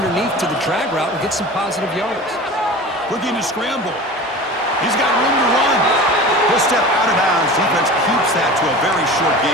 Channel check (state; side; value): normal; both; correlation 0.35